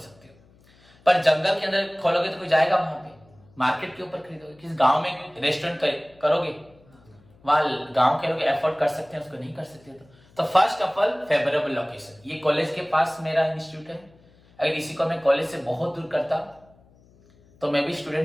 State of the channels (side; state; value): left; noise; hum, 29 dB below the sound